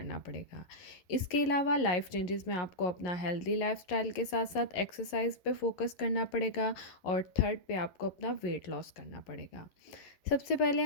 पड़ेगा। इसके अलावा लाइफ चेंजेस में आपको अपना हेल्दी लाइफ़स्टाइल के साथ-साथ एक्सरसाइज पे फ़ोकस करना पड़ेगा और थर्ड पे आपको अपना वेट लॉस करना पड़ेगा। सबसे पहले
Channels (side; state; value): right; late; 11 ms